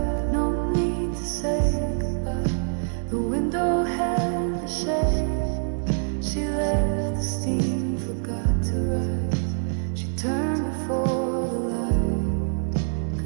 no need to say goodbye. The window held the shade, she left the steam, forgot to rise. She turned before the light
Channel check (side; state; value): left; silent; digital silence